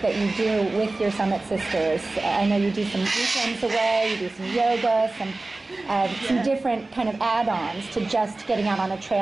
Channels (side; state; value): left; quieter; 3.1 dB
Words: that you do with your Summit Sisters? I know you do some weekends away, you do some yoga, some different kind of add-ons to just getting out on a